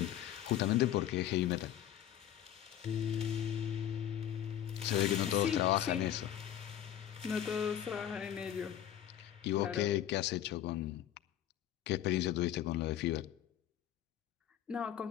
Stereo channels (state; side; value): quieter; right; 11.3 dB